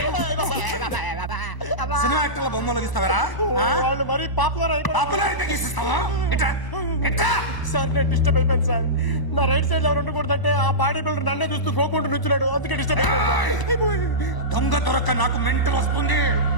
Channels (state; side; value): late; right; 1.0 ms